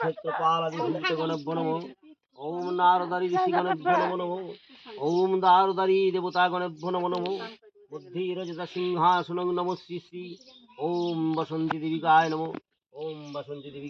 ক্ষেত্রপালাদি ভূতগণেভ্যো নমো ওম নারদারি ঋষিগণেভ্যো নমো নমো ওম দারুদারি দেবতাগণেভ্যো নমো নমো বুদ্ধিরজতা সিংহাসনং নমো শ্রী শ্রী ওম বসন্তী দেবিকায় নমো ওম বসন্তী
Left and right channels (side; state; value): both; identical; correlation 1.00